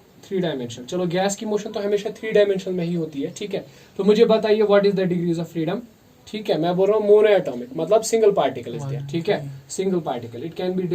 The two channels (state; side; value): identical; both; correlation 1.00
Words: 3 डायमेंशनल। चलो गैस की मोशन तो हमेशा 3 डायमेंशनल में ही होती है, ठीक है। तो मुझे बताइए what is the degrees of freedom, ठीक है। मैं बोल रहा हूँ मोनो एटॉमिक, मतलब सिंगल पार्टिकल इज देयर, ठीक है। Single particle, it can be